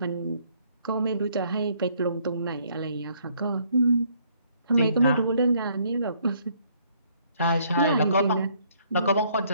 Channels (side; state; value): both; inverted; correlation -0.66